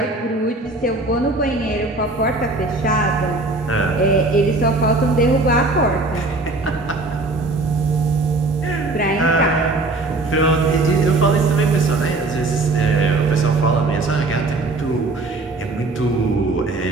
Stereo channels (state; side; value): quieter; left; 3.1 dB